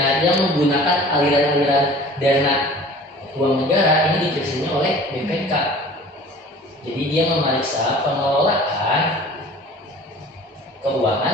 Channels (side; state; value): both; normal; correlation 0.45